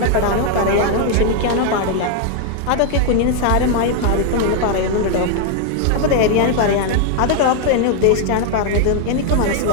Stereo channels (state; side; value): different; both; correlation 0.00